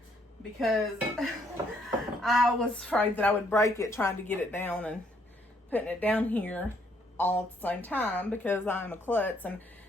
because I was afraid that I would break it trying to get it down and putting it down here all at the same time, because I'm a klutz, and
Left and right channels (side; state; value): both; normal; correlation 0.69